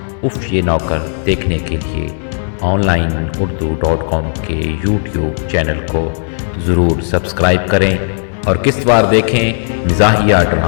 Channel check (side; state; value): right; silent; digital silence